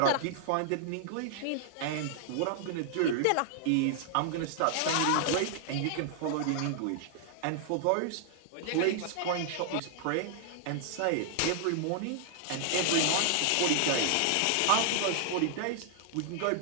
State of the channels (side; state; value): both; different; correlation -0.01